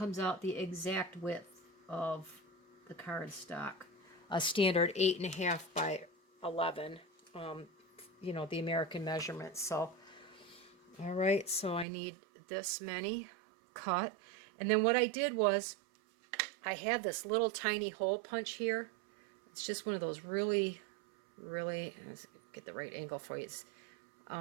out the exact width of the cardstock. A standard 8.5 by 11, you know, the American measurements. So, all right, so I need this many cut. And then what I did was I had this little tiny hole punch here. It's just one of those really, let's get the right angle for you. It's,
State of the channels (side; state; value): left; drops out; at 11.9 s